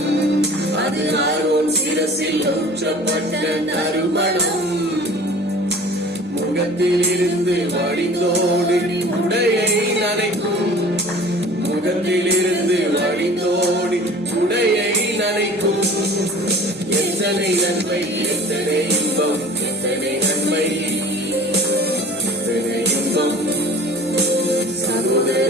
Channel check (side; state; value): both; normal; correlation 0.44